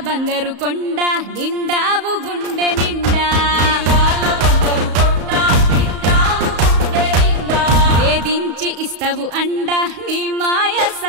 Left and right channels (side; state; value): left; late; 34 ms